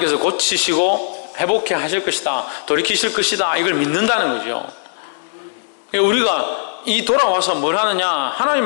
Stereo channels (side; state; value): right; silent; digital silence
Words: 고치시고 회복해 하실 것이다, 돌이키실 것이다, 이걸 믿는다는 거죠. 우리가 이 돌아와서 뭘 하느냐?